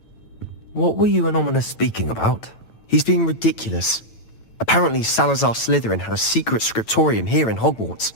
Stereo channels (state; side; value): late; right; 9.0 ms